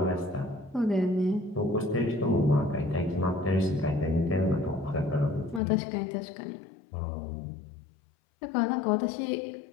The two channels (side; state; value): right; drops out; at 5.6 s